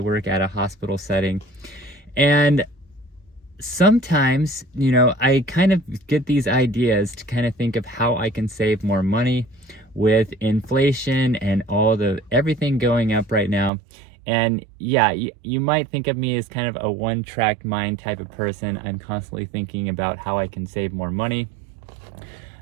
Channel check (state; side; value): drops out; left; at 13.7 s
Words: at a hospital setting, and sometimes, I kind of get these ideas to kind of think of how I can save more money with inflation and everything going up right now. And yeah, you might think of me as kind of a one-track mind type of person. I'm constantly thinking about how I can save more money.